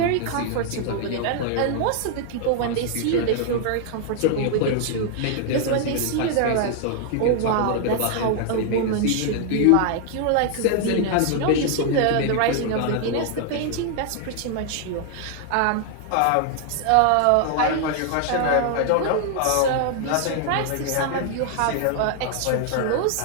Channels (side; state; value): both; different; correlation 0.00